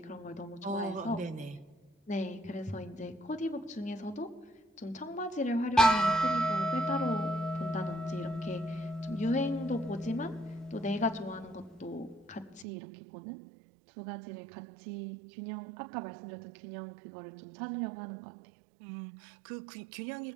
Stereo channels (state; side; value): drops out; left; at 12.7 s